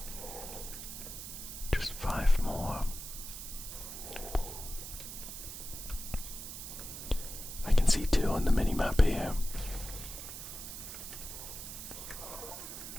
Just 5 more. I can see 2 on the mini-map here.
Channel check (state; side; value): noise; right; hiss, 9 dB below the sound